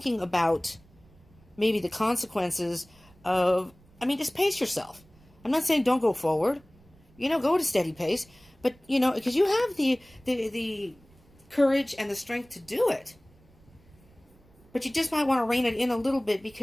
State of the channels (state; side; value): noise; right; rumble, 28 dB below the sound